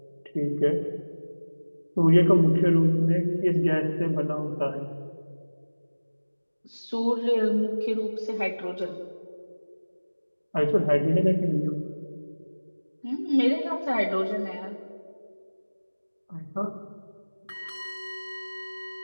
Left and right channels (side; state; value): both; inverted; correlation -1.00